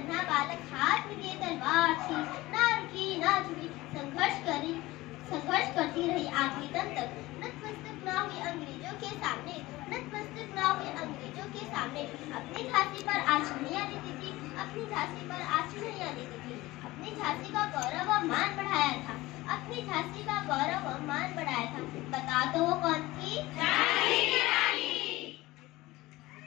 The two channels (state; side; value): quieter; right; 19.0 dB